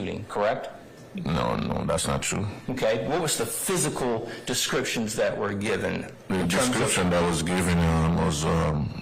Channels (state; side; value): identical; both; correlation 1.00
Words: correct? No, that's not true. Okay, what was the physical descriptions that were given? The description that was given was